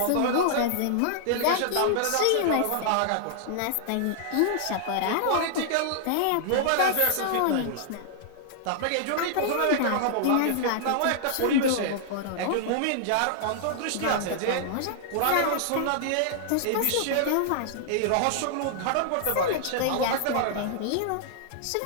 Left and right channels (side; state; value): both; different; correlation -0.01